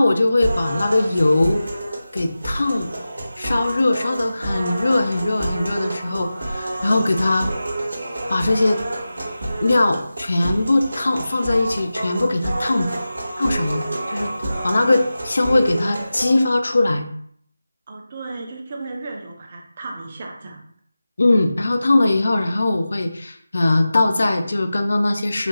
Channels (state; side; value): inverted; both; correlation -0.95